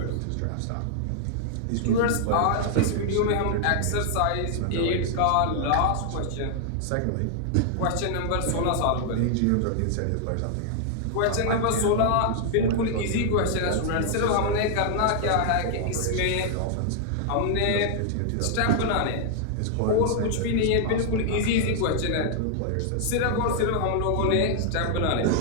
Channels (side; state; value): both; different; correlation -0.01